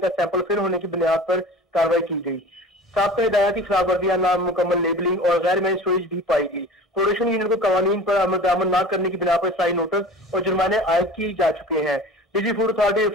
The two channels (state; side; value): normal; both; correlation 0.39